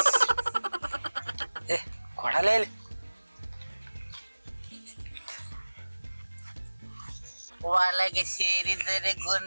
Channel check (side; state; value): both; inverted; correlation -1.00